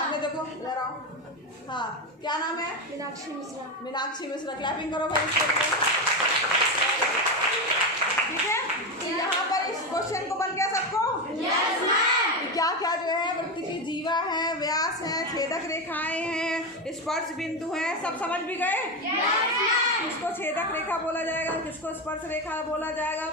देखो, इधर आओ। हाँ, क्या नाम है? मीनाक्षी मिश्रा। मीनाक्षी मिश्रा, क्लैपिंग करो भाई इसके लिए। ठीक है, तो यहाँ पर इस क्वेश्चन को बन गया सबको? Yes ma'am. क्या क्या जो है वृत्त की जीवा है, व्यास है, छेदक रेखाएं हैं, स्पर्श बिंदु हैं, सब समझ भी गए? Yes ma'am. किसको छेदक रेखा बोला जाएगा, किसको स्पर्श रेखा बोला जाएगा,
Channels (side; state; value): both; normal; correlation 0.14